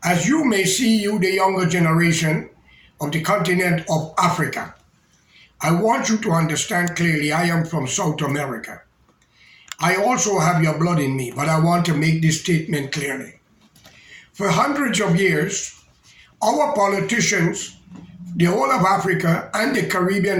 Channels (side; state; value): both; identical; correlation 1.00